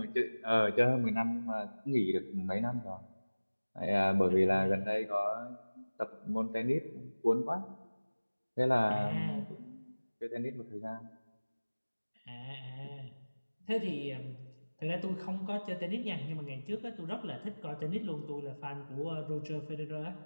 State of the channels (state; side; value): inverted; both; correlation -1.00